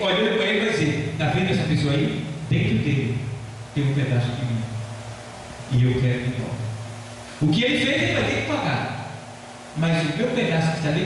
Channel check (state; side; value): identical; both; correlation 1.00